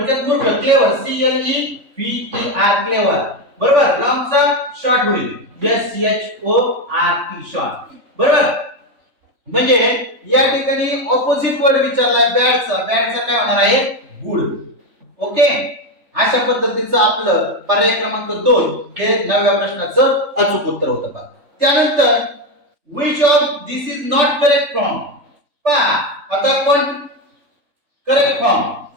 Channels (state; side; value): late; left; 3.5 ms